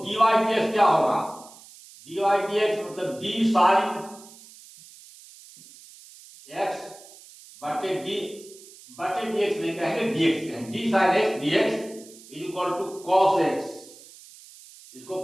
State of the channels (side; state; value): right; noise; hiss, 21 dB below the sound